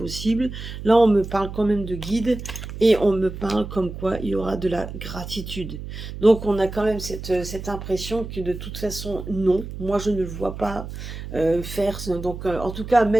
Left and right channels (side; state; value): right; noise; hum, 9 dB below the sound